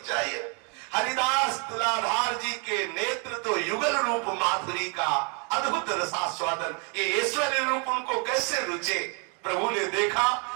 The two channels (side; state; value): left; quieter; 34.9 dB